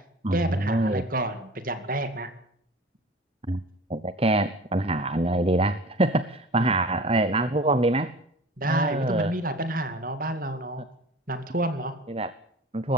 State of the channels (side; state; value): both; normal; correlation 0.41